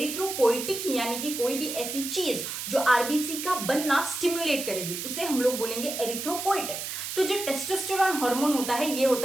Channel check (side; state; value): right; noise; hiss, 5 dB below the sound